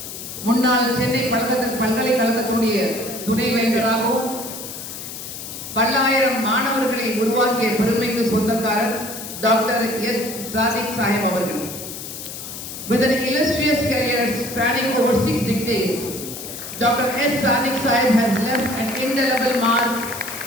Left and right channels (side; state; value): left; noise; hiss, 10 dB below the sound